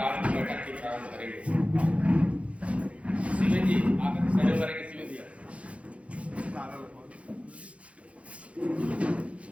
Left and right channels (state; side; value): late; left; 0.063 ms